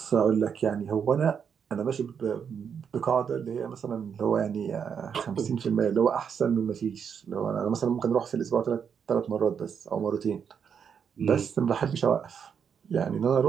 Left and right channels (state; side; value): quieter; left; 7.2 dB